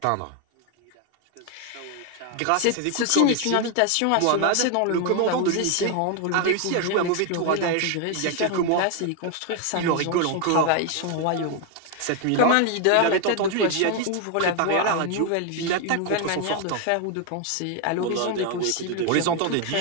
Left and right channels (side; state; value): both; different; correlation 0.01